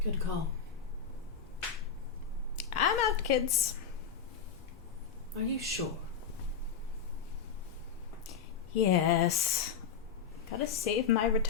Good call. I'm out, kids. Are you sure? Yes. Gotta save my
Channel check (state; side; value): quieter; right; 6.7 dB